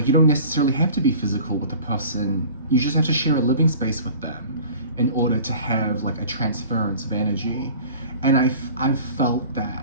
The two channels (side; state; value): both; inverted; correlation -0.43